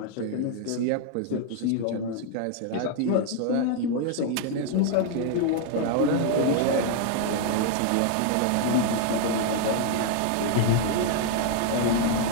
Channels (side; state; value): both; different; correlation 0.00